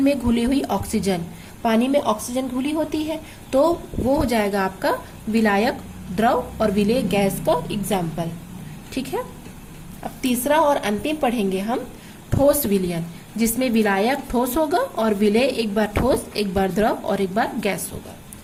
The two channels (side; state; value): both; identical; correlation 1.00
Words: घुली हुई ऑक्सीजन, पानी में ऑक्सीजन घुली होती है, तो वो हो जाएगा आपका विलायक द्रव और विलेय गैस का एग्जाम्पल। ठीक है, अब तीसरा और अंतिम पढ़ेंगे हम ठोस विलयन, जिसमें विलायक ठोस होगा और विलेय एक बार ठोस, एक बार द्रव और एक बार गैस होगा।